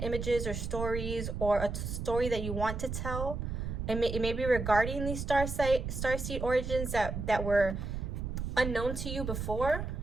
images or stories, or a story that you want to tell. It may be regarding these starseed origins that were unknown to you before,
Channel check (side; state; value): right; noise; rumble, 4 dB below the sound